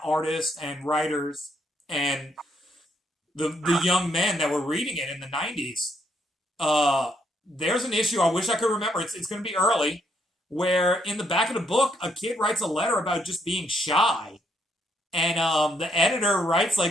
artists and writers and the young men that were reading it in the 90s. There's an issue, I wish I could remember, it's going to be early, where in the back of the book, a kid writes a letter about just being shy. And the editor writes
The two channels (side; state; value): both; normal; correlation 0.74